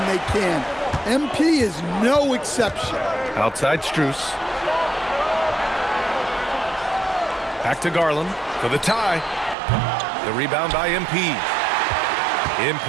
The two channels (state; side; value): drops out; left; at 9.6 s